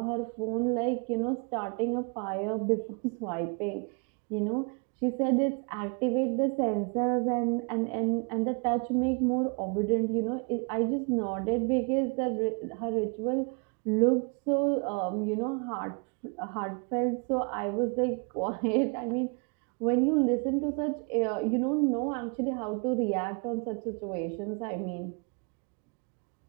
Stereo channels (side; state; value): left; quieter; 36.1 dB